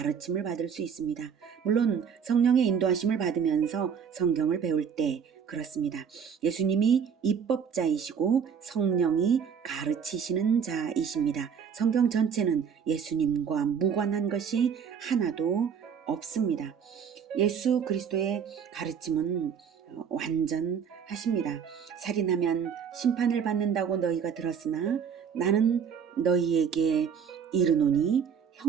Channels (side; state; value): left; quieter; 7.2 dB